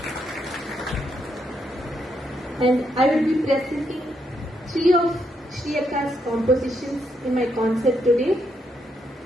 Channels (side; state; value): both; normal; correlation 0.78